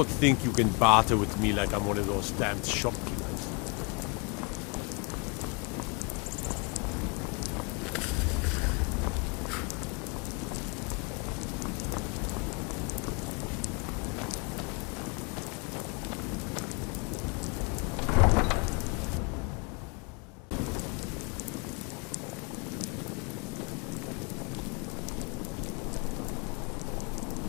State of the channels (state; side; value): quieter; right; 32.2 dB